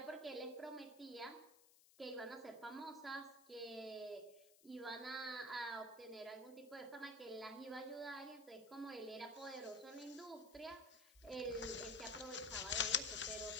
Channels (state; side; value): noise; left; hiss, 23 dB below the sound